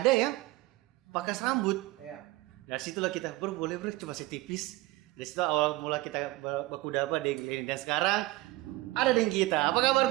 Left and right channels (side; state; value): left; quieter; 19.5 dB